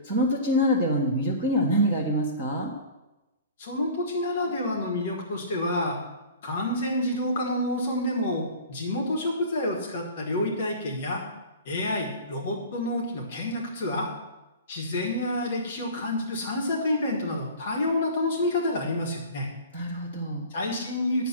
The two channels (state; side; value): inverted; both; correlation -0.40